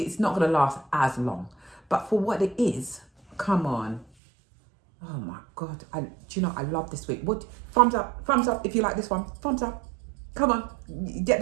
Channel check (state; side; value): drops out; left; at 4.0 s